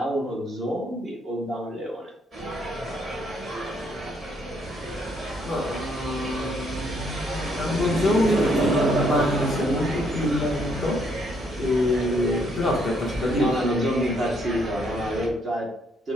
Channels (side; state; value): both; normal; correlation 0.70